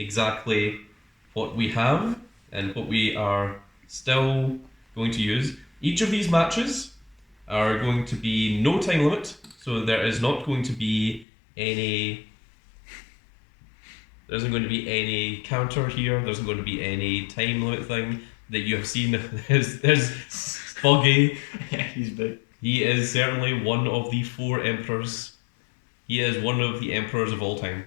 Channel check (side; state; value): right; drops out; at 11.2 s